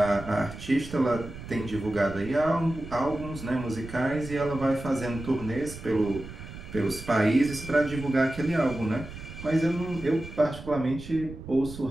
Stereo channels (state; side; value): noise; right; rumble, 13 dB below the sound